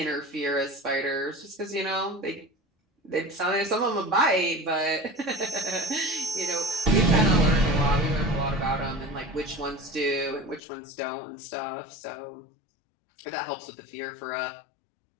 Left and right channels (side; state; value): right; drops out; at 10.6 s